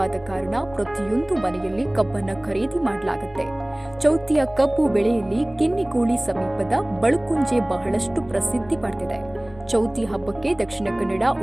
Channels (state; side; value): noise; left; rumble, 24 dB below the sound